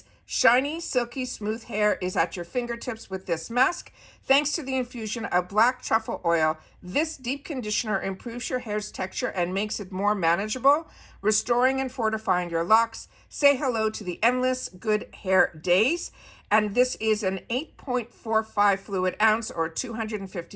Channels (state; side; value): identical; both; correlation 1.00